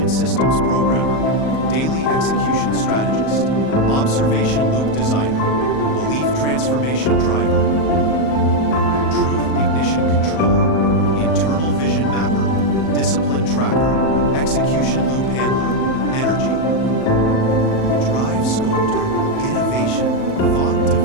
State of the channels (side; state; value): right; late; 38 ms